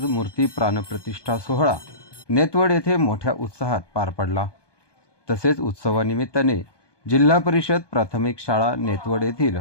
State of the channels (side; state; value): right; late; 1.2 ms